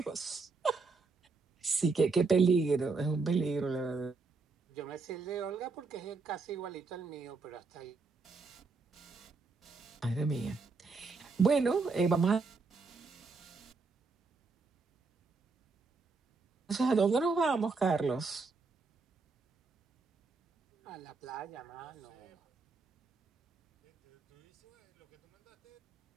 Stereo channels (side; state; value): left; quieter; 4.3 dB